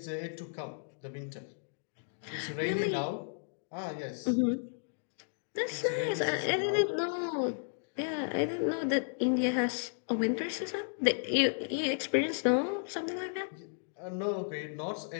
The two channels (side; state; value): right; silent; digital silence